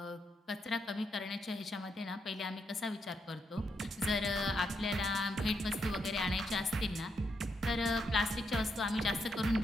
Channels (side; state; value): both; normal; correlation 0.80